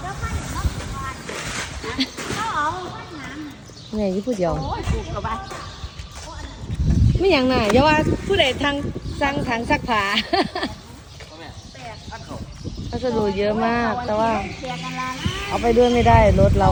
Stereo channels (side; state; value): both; identical; correlation 1.00